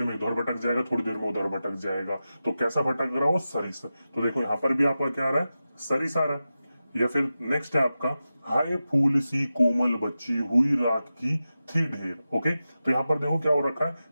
में इधर भटक जाएगा, थोड़ी देर में उधर भटक जाएगा। तो कैसा भटक रहा हो, सरिस। तो देखो यहाँ पर भी आपका क्या आ रहा है, सरिस आ रहा है। या फिर नेक्स्ट है आपका हाय फूल सी कोमल बच्ची हुई रात की थी ढेर। ओके, तो यहां पर देखो क्या हो रखा है,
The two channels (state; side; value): inverted; both; correlation -0.93